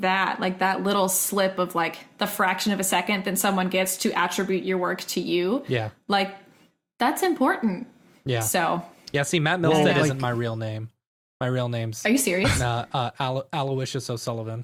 that, like that little slip of like the fraction of a second that someone gets to attribute your work to you. Yeah. Like that's important. Yeah. So Yeah. See, Matt Milstead Well, isn't my real name. My real name's are you serious? Aloysius O'Sullivan.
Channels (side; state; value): both; identical; correlation 1.00